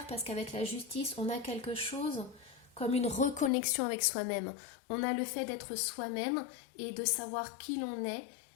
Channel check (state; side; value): drops out; right; at 3.5 s